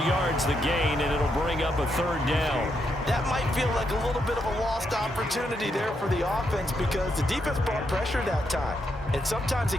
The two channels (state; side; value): normal; both; correlation 0.80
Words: yards the gain, and it'll bring up a 3rd down. That might feel like a little bit of a lost opportunity there for the offense because the defense brought pressure that time. And sometimes